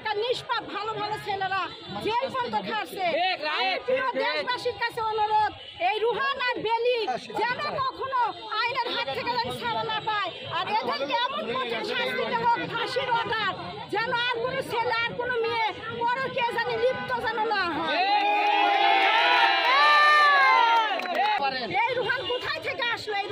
নিষ্পাপ ভালো ভালো ছেলেরা জেল পর্যন্ত খাচ্ছে। দেশবাসীর কাছে অনুরোধ, এই রোহান আর বেলি যেন কখনো আইনের হাত থেকে ছাড়া না পায়, আর এদেরকে এমন কঠিন শাস্তি দেওয়া হোক, ফাঁসির অর্ডার, যেন আর কোনো ছেলে আর কোনো মেয়ে পরকীয়া জানি লিপ্ত যেন না হয়। এই রোহান কোথায় থেকে আসলো? এই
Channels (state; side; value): identical; both; correlation 1.00